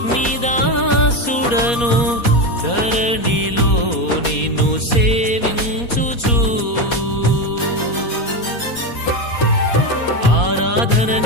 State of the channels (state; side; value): late; right; 4.2 ms